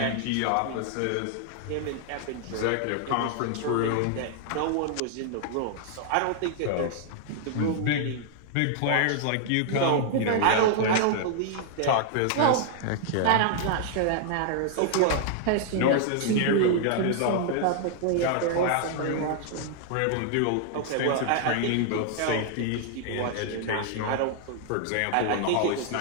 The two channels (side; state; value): both; different; correlation 0.00